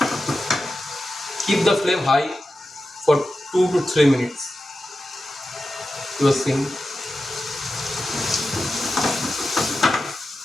Keep the flame high for 2 to 3 minutes. You are seeing.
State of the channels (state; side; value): normal; both; correlation 0.92